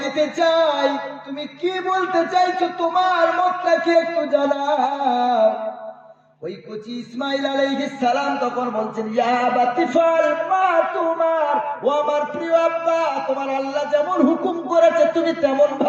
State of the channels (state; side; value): identical; both; correlation 1.00